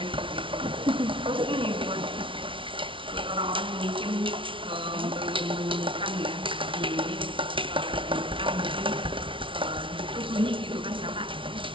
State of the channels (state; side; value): late; left; 0.25 ms